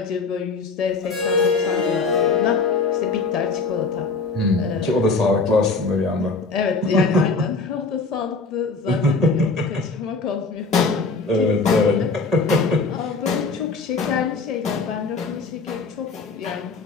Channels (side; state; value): right; quieter; 4.1 dB